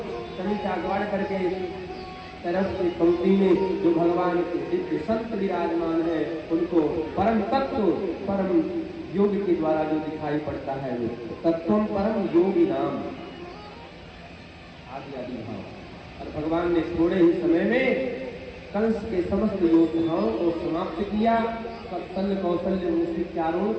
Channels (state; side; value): identical; both; correlation 1.00